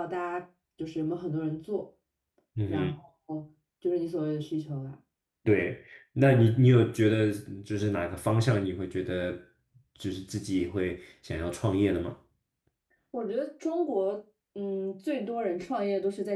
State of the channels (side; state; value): both; identical; correlation 1.00